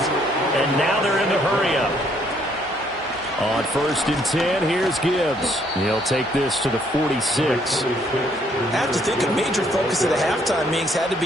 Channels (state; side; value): normal; both; correlation 0.67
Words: And now they're in the hurry-up. On 1st and 10, here's Gibbs. He'll take this to the 46. I have to think a major focus of the halftime meetings had to